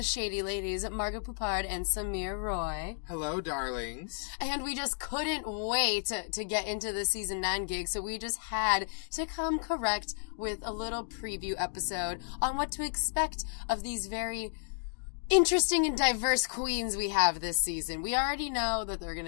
Shady Ladies, Margaret Poupard and Samir Roy. Hello, darlings. And we just couldn't wait to get into the Season 9 gig, so we just had to come correct with a little preview episode on what to expect of these very interesting and diverse queens we have this season. We already know that there are going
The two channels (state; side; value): silent; right; digital silence